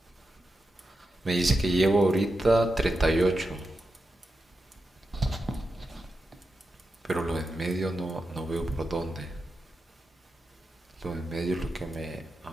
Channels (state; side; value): normal; both; correlation 0.88